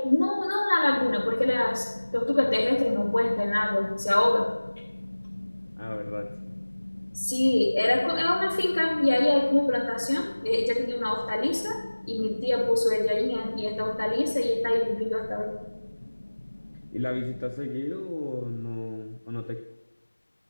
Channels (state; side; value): inverted; both; correlation -1.00